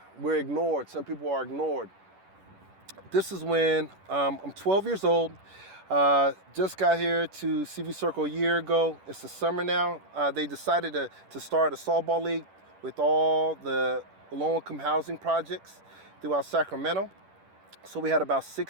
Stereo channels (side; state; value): left; late; 10 ms